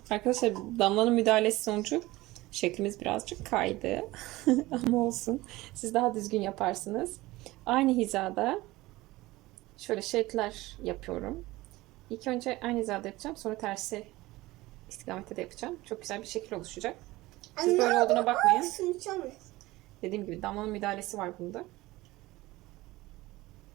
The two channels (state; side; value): quieter; left; 19.1 dB